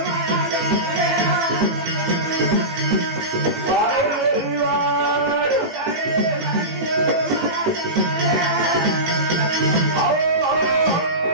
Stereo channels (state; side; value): late; left; 18 ms